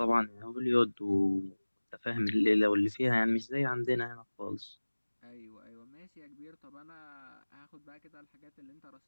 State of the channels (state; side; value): inverted; both; correlation -1.00